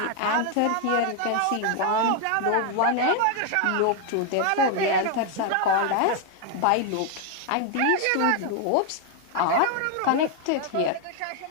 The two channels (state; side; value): different; both; correlation 0.00